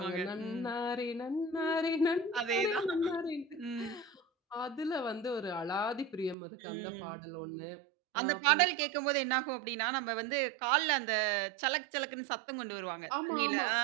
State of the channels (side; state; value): left; drops out; at 6.4 s